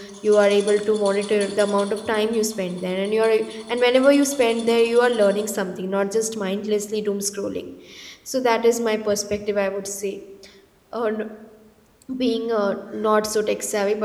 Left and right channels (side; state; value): both; identical; correlation 1.00